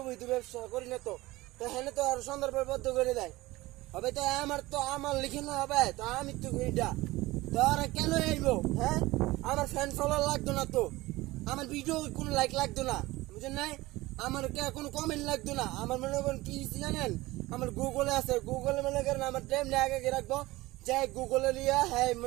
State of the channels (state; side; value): quieter; left; 19.4 dB